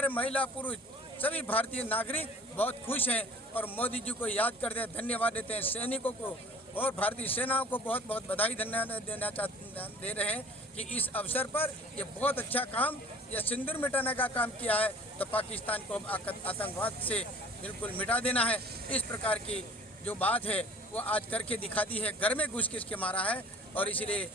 महिला पुरुष सभी भारतीय नागरिक बहुत खुश हैं और मोदी जी को याद करते हैं, धन्यवाद देते हैं। सैनिकों को और भारतीय सेनाओं को बहुत बहुत बधाई दे रहे हैं कि इस अवसर पर ये बहुत अच्छा काम, ये सिंदूर मिटाने का काम किया है। तो पाकिस्तान को आतंकवाद से बिल्कुल मिटा देना है, इस प्रकार की जो बात है वो आज करके दिखा दी है। घर में घुस के मारा है और इसलिए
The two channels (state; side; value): normal; both; correlation 0.48